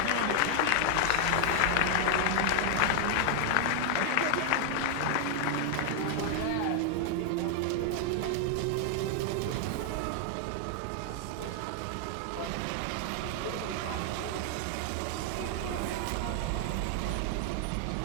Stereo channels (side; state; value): both; different; correlation 0.00